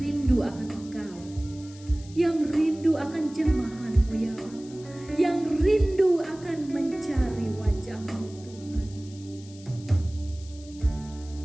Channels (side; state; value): left; noise; hiss, 21 dB below the sound